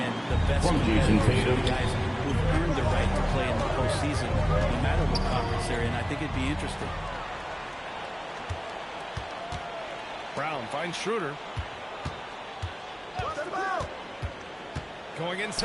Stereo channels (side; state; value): both; identical; correlation 1.00